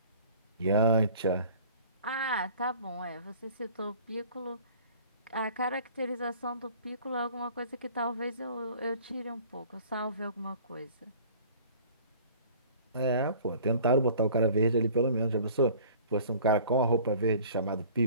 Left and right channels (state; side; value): inverted; both; correlation -0.48